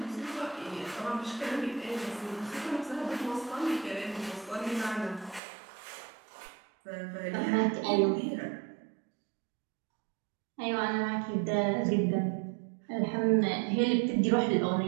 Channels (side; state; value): left; drops out; at 5.4 s